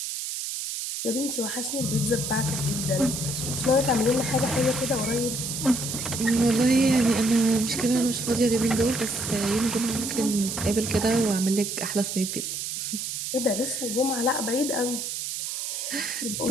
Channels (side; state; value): right; noise; hiss, 4 dB below the sound